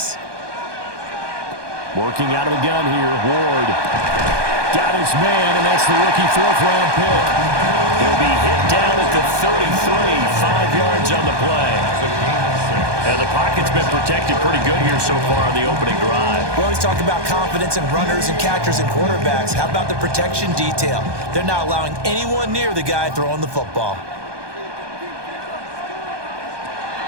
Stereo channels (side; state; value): left; late; 1.2 ms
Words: Working out of the gun here, Ward. Got his man, and that's the rookie 4th-round pick. He'll be hit down at the 33, 5 yards on the play. And the pocket's been protected pretty good here so far on the opening drive. We always talk about confidence in runners and catchers and quarterbacks. How about the protection detail? They're not allowing anyone near the guy throwing the football.